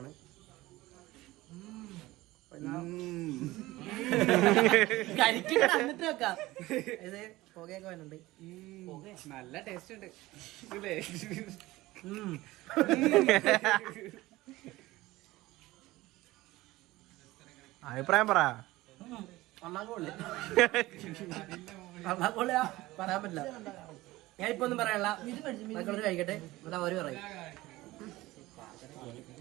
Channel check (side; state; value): left; quieter; 18.5 dB